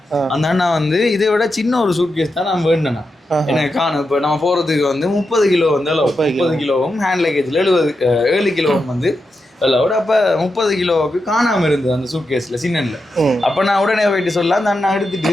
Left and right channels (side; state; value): both; normal; correlation 0.87